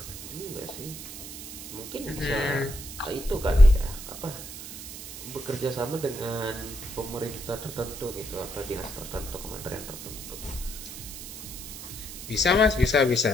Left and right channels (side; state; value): right; noise; hiss, 11 dB below the sound